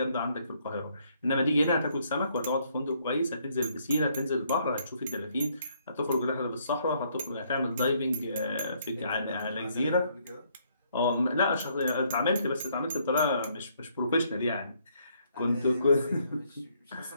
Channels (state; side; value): inverted; both; correlation -0.69